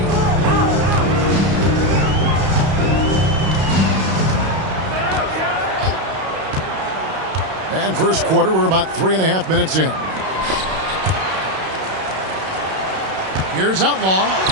And first quarter, we're about 3.5 minutes in. Here's Outlaw.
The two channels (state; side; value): late; left; 32 ms